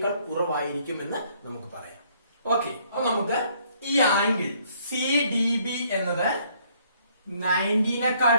കുറവായിരിക്കും എന്ന് നമുക്ക് പറയാം. ഓക്കെ, അപ്പൊ നമുക്ക് ഈ ആംഗിൾ സി ഡി ബി എന്നത്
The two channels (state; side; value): inverted; both; correlation -0.65